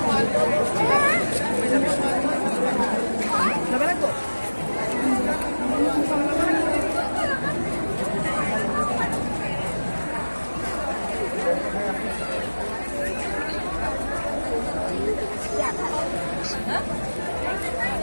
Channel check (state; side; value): inverted; both; correlation -1.00